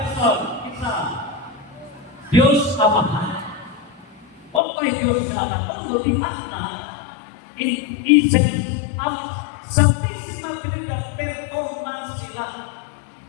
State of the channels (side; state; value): right; drops out; at 4.6 s